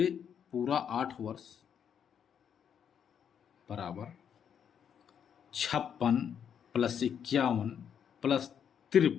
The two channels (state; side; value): quieter; right; 8.2 dB